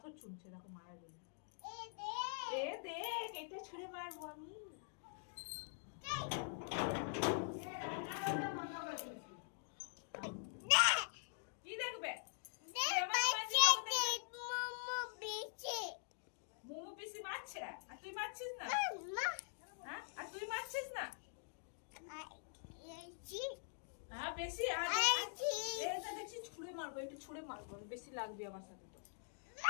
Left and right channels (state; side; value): silent; right; digital silence